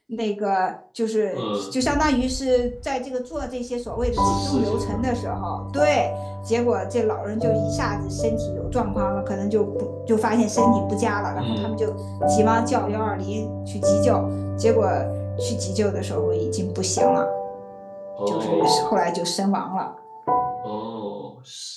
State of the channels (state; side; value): identical; both; correlation 1.00